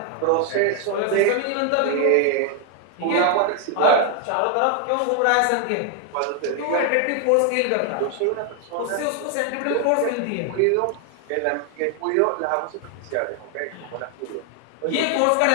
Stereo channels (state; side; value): different; both; correlation 0.00